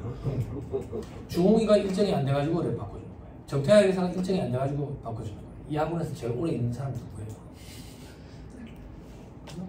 주홍이가 일정이 안 돼가지고 그래 바꿔주는 거예요. 정태학 회사가 일정이 안 돼가지고 바꿔주는 거예요. 이 학원에서 제일 오래 있는 사람이 누구예요?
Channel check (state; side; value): identical; both; correlation 1.00